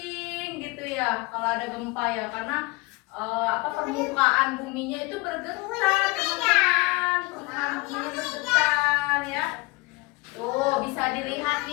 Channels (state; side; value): quieter; right; 23.4 dB